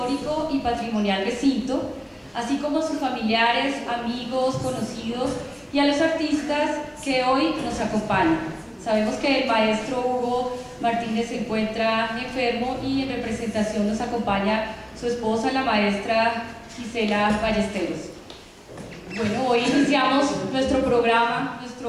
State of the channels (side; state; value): both; identical; correlation 1.00